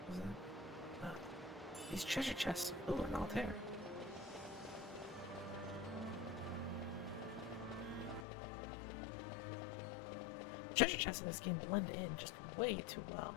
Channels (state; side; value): drops out; right; at 8.2 s